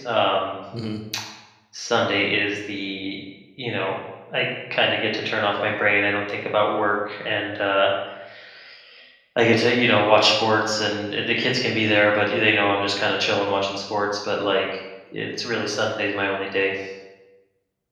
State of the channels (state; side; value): identical; both; correlation 1.00